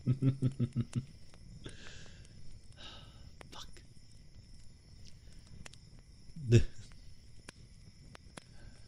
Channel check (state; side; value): identical; both; correlation 1.00